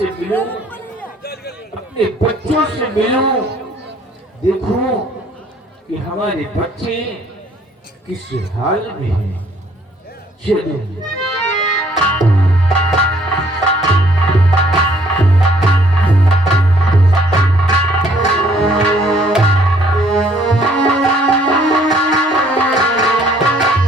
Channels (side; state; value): both; normal; correlation 0.62